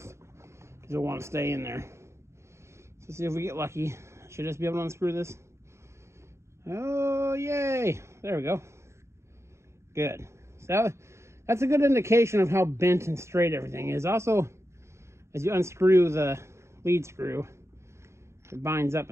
because you'll want to stay in there. So see if we get lucky. Should just be able to unscrew this. Oh, yay! There we go. Good. So that's a good indication of how bent and straight everything is. Also, as you unscrew the lead screw, it binds up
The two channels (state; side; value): late; left; 0.13 ms